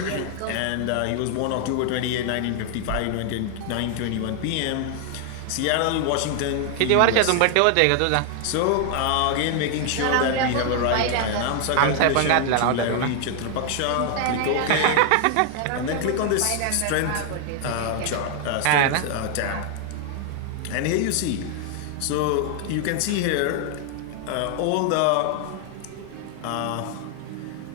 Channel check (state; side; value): different; both; correlation 0.00